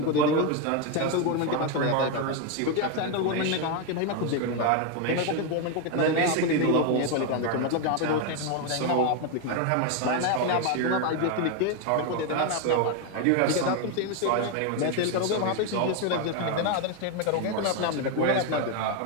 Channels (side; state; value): both; different; correlation 0.02